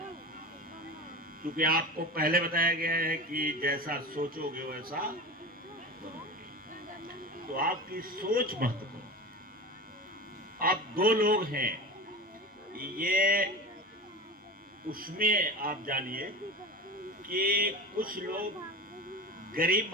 क्योंकि आपको पहले बताया गया है कि जैसा सोचोगे वैसा बनोगे, तो आपकी सोच महत्वपूर्ण। आप दो लोग हैं, ये उसमें आप जानिए कि कुछ लोग गरीब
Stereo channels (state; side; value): normal; both; correlation 0.29